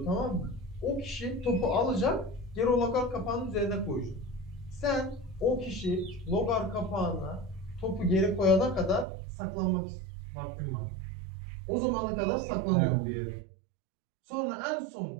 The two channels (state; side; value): drops out; left; at 9.1 s